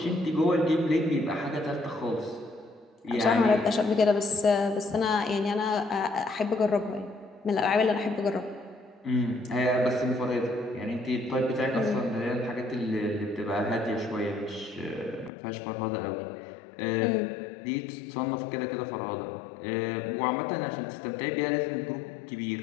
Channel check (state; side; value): drops out; right; at 15.3 s